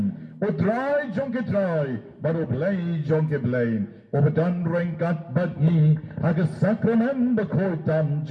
utray jonkitray, but ublay jonkiblay, ubadan rengkat badni, hagas sakramen bakoitam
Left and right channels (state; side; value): identical; both; correlation 1.00